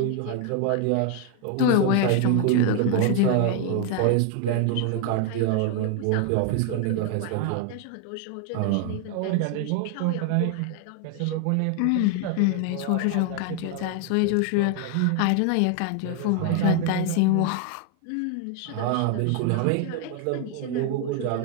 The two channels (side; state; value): both; different; correlation 0.00